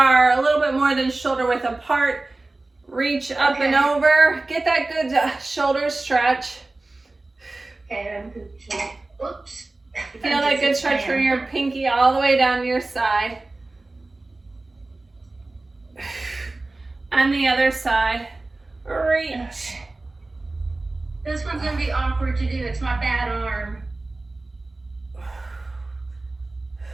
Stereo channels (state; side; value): quieter; left; 3.1 dB